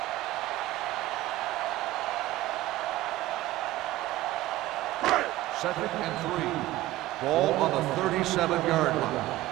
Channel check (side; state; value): left; quieter; 16.3 dB